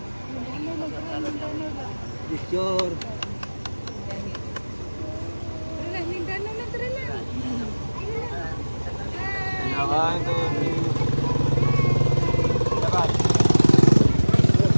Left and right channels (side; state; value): both; inverted; correlation -1.00